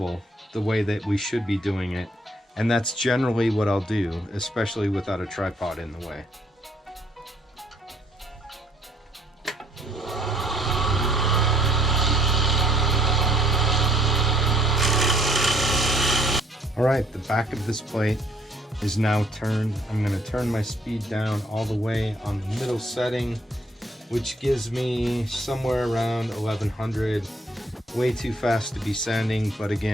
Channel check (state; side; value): normal; both; correlation 0.64